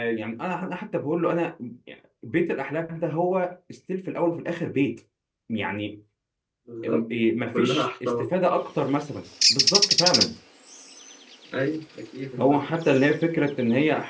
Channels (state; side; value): identical; both; correlation 1.00